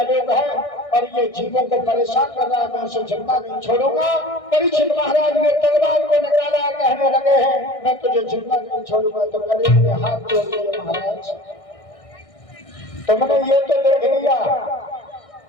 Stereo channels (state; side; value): late; right; 1.6 ms